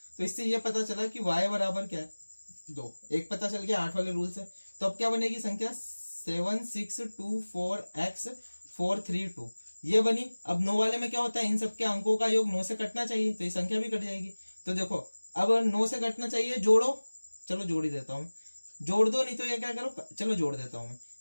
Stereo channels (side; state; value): both; inverted; correlation -1.00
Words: तो इससे ये पता चला कि y बराबर क्या है 2, एक पता चल गया 8 वाले रूल से। तो अब क्या बनेगी संख्या, 7 6 2 4 x 4 3 2 ये बनी। अब 9 वाले में क्या होता है, इन सबके अंकों का योग 9 से कटना चाहिए, तो ये संख्या भी कट जाएगी। तो देखो अब 9 से कटना चाहिए, जोड़ो, चलो जोड़ ही देता हूँ, जोड़ दो, नहीं तो ये क्या करो, चलो जोड़ देता हूँ मैं।